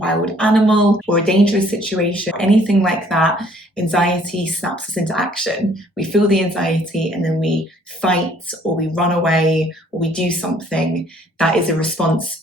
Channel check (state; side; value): normal; both; correlation 0.60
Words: animal or a dangerous situation, anything like that, anxiety snaps us into action. We feel the anxiety and then we fight or we run away or we do something that is a response